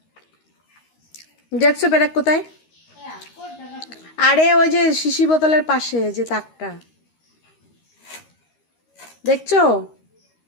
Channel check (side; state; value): right; late; 13 ms